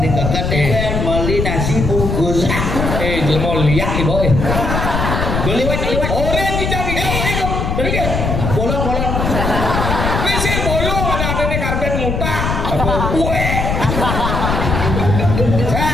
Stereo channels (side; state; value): left; noise; rumble, 1 dB below the sound